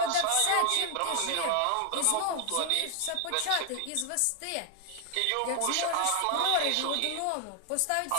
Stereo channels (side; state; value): both; different; correlation 0.00